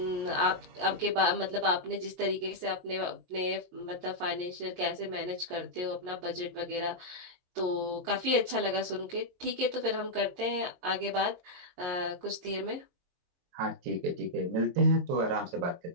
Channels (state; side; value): late; left; 22 ms